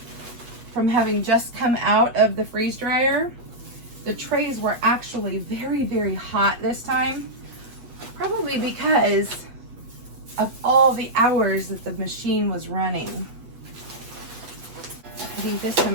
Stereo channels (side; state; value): left; late; 8.0 ms